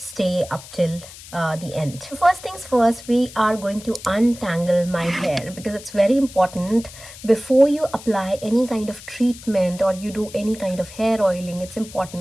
up till the end. So first things first, we are going to untangle my hair, because it's very important before you apply any kind of treatment or you do any kind of hair oiling. It's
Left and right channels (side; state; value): left; noise; hiss, 17 dB below the sound